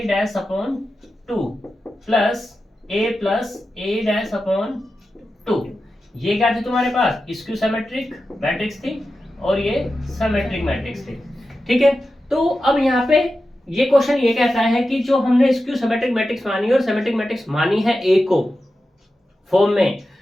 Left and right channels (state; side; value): normal; both; correlation 0.92